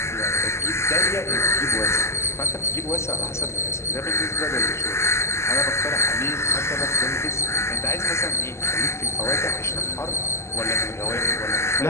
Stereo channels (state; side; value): late; right; 0.13 ms